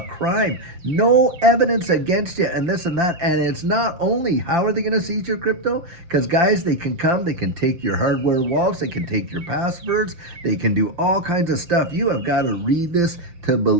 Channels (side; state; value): left; late; 5.8 ms